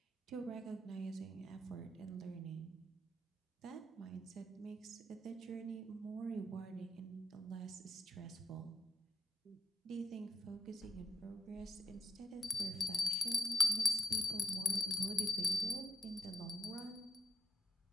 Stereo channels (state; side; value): normal; both; correlation 0.85